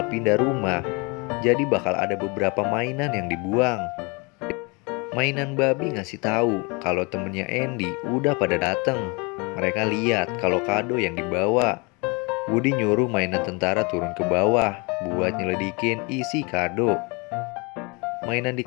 pindah rumah. Jadi bakal ada beberapa mainan yang dibuang. Mainan babi ngasih tahu kalau temennya Andy udah pada dateng. Mereka lihat kalau kado yang dibawa. Woody nyuruh mainan tentara turun ke bawah buat nyelidikin isi kado. Mainan di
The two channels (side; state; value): right; quieter; 29.3 dB